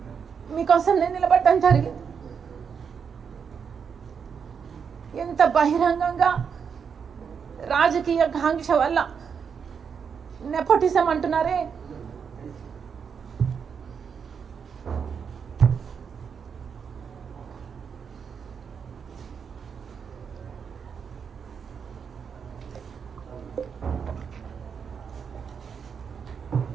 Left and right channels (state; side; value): quieter; left; 6.6 dB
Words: మీకోసం నేను నిలబడటం జరిగింది. ఎంత బహిరంగంగా రాజకీయ కాంక్ష వల్ల నెపోటిజం అంటున్నారే,